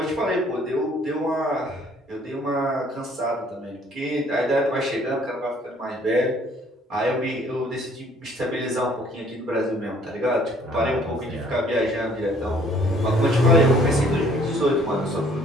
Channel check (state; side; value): normal; both; correlation 0.59